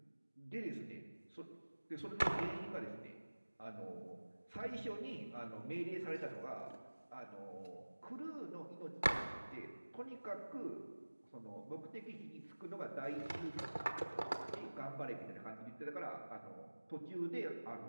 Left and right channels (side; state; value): both; inverted; correlation -1.00